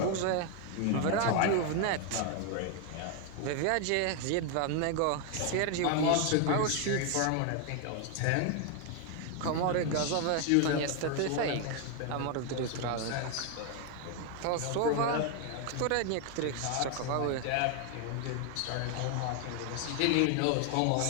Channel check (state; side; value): different; both; correlation 0.01